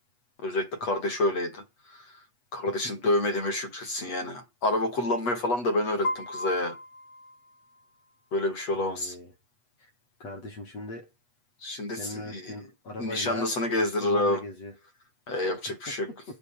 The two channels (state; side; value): late; right; 8.2 ms